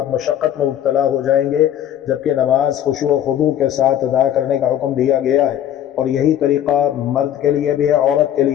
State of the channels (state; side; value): quieter; right; 10.8 dB